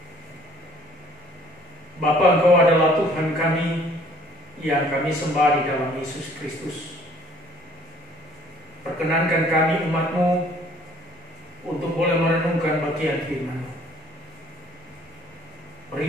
Bapa, Engkau adalah Tuhan kami yang kami sembah di dalam Yesus Kristus. Perkenankan kami umat-Mu untuk boleh merenungkan bagian firman-Mu.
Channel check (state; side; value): normal; both; correlation 0.57